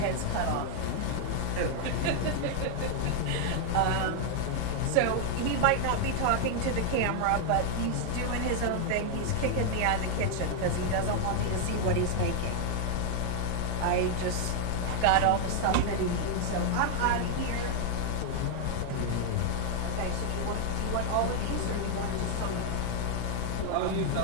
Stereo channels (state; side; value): different; both; correlation 0.00